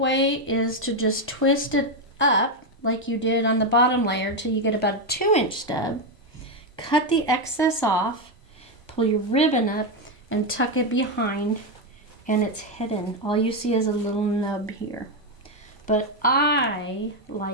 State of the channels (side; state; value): both; normal; correlation 0.06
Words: is to just twist it up like you did on the bottom layer till you get about a 2 inch stub. Cut the excess off, pull your ribbon up and tuck it behind, and it's hidden. All you see is a little nub here. But I